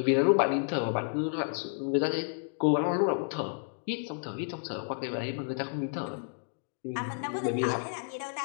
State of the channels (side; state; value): right; silent; digital silence